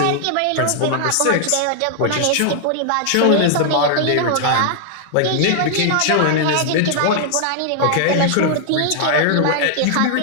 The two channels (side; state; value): both; different; correlation 0.00